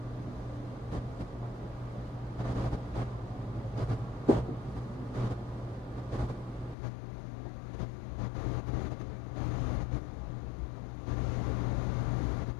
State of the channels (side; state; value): right; drops out; at 6.8 s